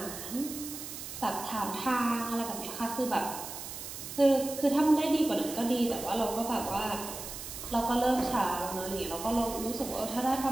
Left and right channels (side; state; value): right; noise; hiss, 9 dB below the sound